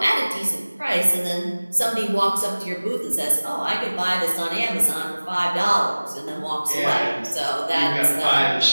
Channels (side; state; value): both; inverted; correlation -1.00